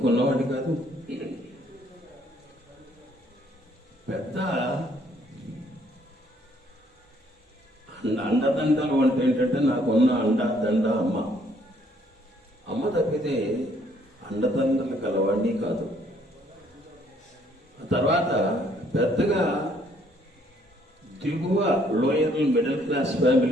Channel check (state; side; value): normal; both; correlation 0.65